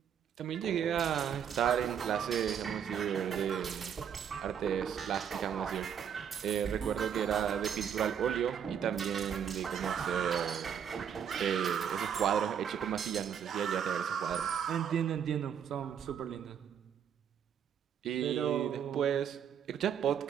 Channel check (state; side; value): quieter; left; 8.3 dB